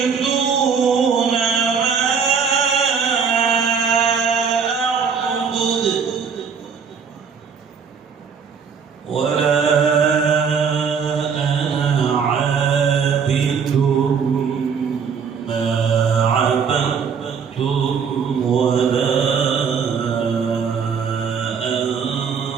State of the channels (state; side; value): quieter; left; 6.3 dB